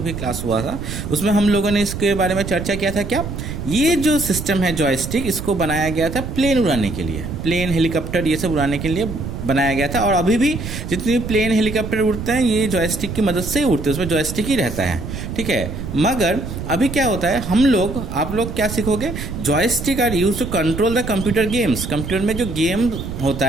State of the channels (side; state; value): right; noise; rumble, 7 dB below the sound